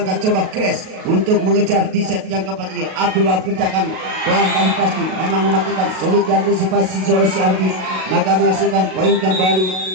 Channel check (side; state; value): left; late; 38 ms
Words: coba Kres untuk mengejar di set yang keempat ini. Abdul Wahab kerjakan pelantai pasti memang mematikan, sulit diantisipasi oleh si Andi, maka menghasilkan poin kembali